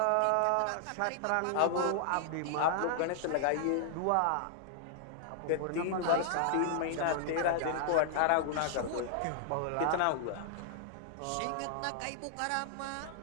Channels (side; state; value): both; different; correlation -0.01